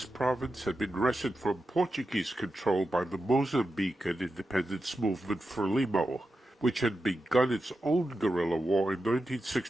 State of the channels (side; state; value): both; normal; correlation 0.90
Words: province had been wrested from Portuguese control by the Mozambican independence movement Frelimo, which had begun its own guerrilla war in